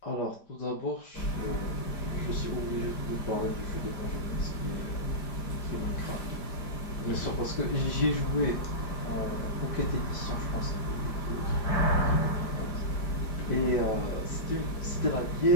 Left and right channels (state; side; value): late; right; 5.0 ms